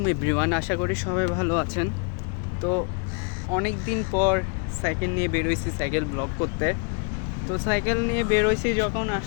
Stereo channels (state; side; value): quieter; right; 36.3 dB